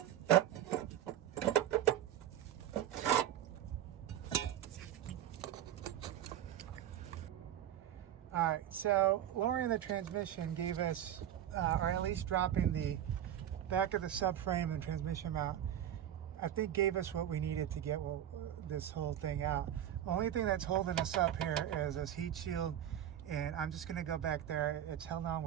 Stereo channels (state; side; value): quieter; left; 11.2 dB